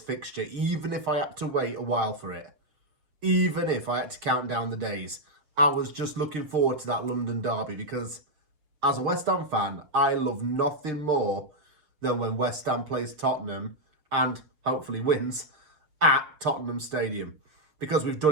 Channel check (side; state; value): left; late; 6.5 ms